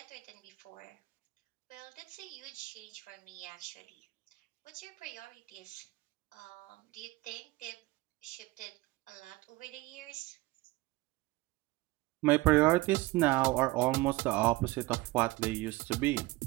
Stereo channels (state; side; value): quieter; left; 20.2 dB